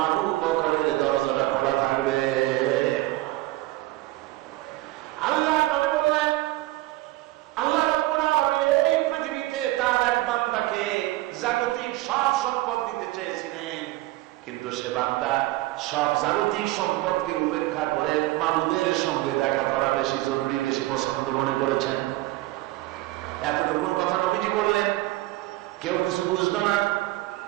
আবু বকরের দরজাটা খোলা থাকবে। আল্লাহ নবী বললেন, আল্লাহ রাব্বুল আলামিন এই পৃথিবীতে তার এক বান্দাকে জাগতিক সব সম্পদ দিতে চেয়েছিলেন, কিন্তু সে বান্দা সব জাগতিক সম্পদকে উপেক্ষা করে মাবুদের সঙ্গে দেখা করা বেশি জরুরি, বেশি পছন্দ মনে করেছেন। এতটুকু কথা নবীজি বললেন, কেউ কিছু বুঝলো না।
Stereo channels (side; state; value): left; quieter; 18.0 dB